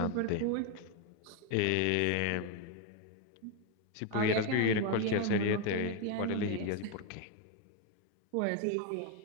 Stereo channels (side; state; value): both; different; correlation 0.01